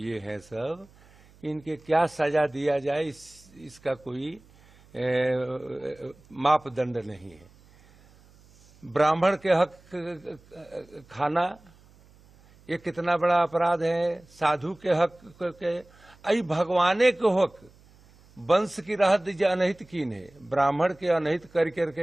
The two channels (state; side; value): noise; right; hum, 27 dB below the sound